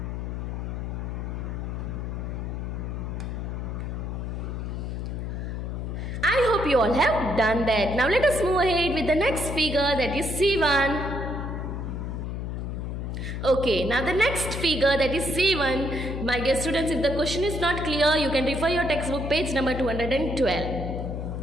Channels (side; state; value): left; noise; hum, 4 dB below the sound